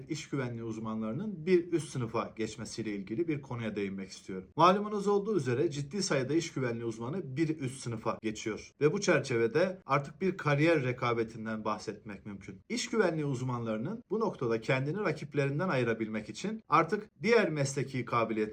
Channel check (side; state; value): both; identical; correlation 1.00